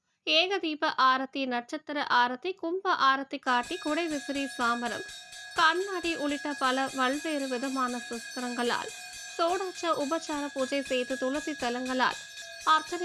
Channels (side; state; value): both; identical; correlation 1.00